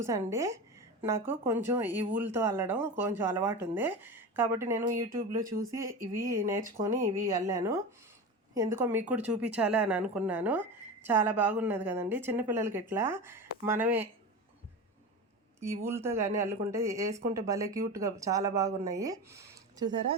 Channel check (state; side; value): normal; both; correlation 0.26